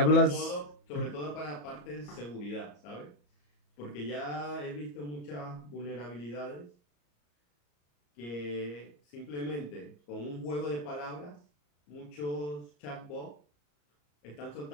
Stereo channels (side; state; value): right; late; 34 ms